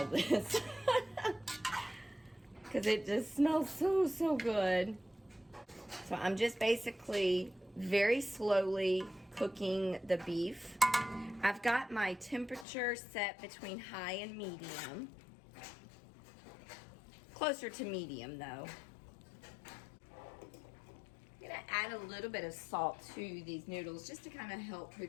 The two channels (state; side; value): drops out; right; at 12.7 s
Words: this. Because it just smells so, so good. So I'm just basically very slowly cooking the beef. I've got my temperature set between high and medium. Closer to medium though. I'm gonna add a little bit of salt to these noodles just to kind of help